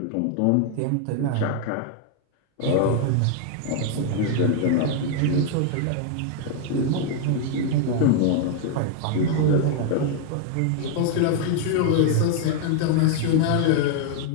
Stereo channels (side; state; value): both; different; correlation 0.00